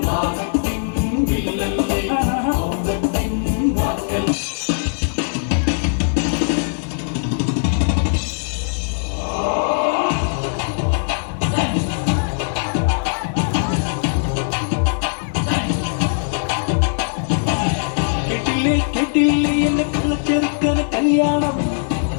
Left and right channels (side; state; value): right; silent; digital silence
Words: കേട്ടില്ലേ എന്നെ കള്ളച്ചെറുക്കന കല്യാണം